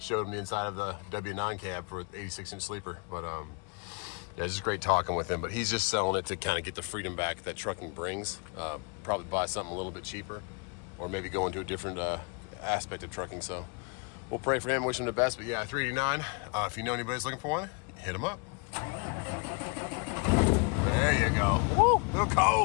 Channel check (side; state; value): right; quieter; 33.4 dB